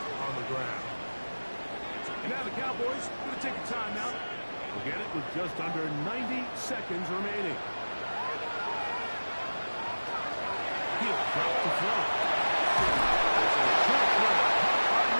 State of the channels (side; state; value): both; inverted; correlation -1.00